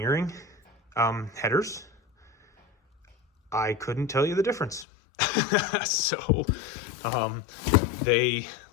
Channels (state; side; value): drops out; right; at 4.9 s